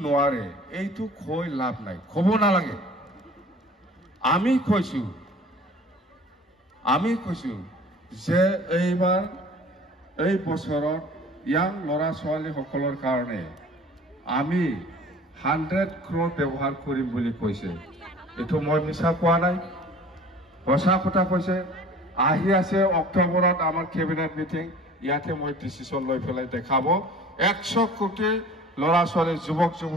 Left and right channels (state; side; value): normal; both; correlation 0.46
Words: নোৱাৰে এইটো কৈ লাভ নাই ক'ব নালাগে আমি কৈছো যে এইবাৰ এই বছৰত ইয়াং ল'ৰা ছোৱালী সকলৰ কাৰণে আমি 100 crore ব্যৱহাৰ কৰিম বুলি কৈছে এটো মই মিছা কোৱা নাই সঁচা কথা কৈছে আহি আছে অক্টোবৰত আমাৰ কেবিনেট মিটিং ইয়াতে মই ডিচিশ্যন লৈ পেলাই দেখাব 100 কোটি ল'ৰা ছোৱালী যুৱক